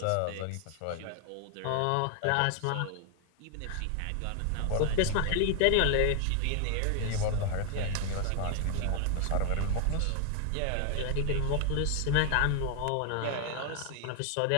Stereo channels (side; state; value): both; different; correlation 0.00